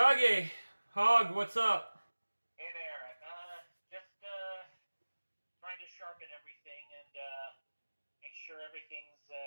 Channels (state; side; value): inverted; both; correlation -1.00